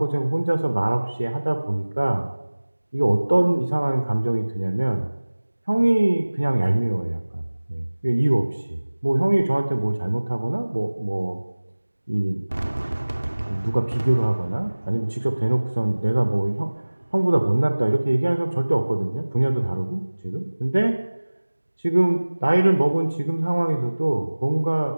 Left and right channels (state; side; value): inverted; both; correlation -1.00